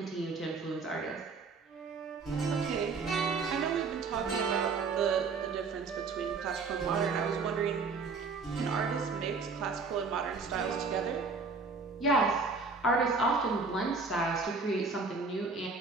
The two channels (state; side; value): quieter; left; 4.4 dB